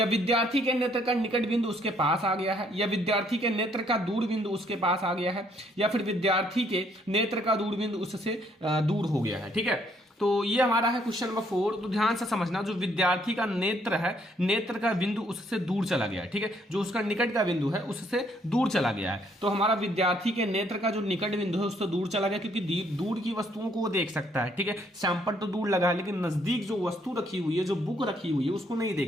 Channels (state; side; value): normal; both; correlation 0.67